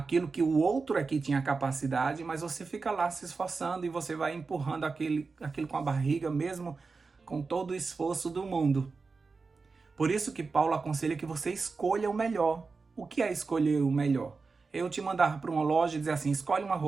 que o outro aqui tinha capacidade, mas você fica lá se esforçando e você vai empurrando aquilo com a barriga, mesmo com todo o esforço do mundo. Por isso que Paulo aconselha que você escolha o melhor. O que é escolher o melhor? Eu te mandar para uma loja e dizer assim, escolhe uma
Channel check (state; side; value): quieter; left; 4.4 dB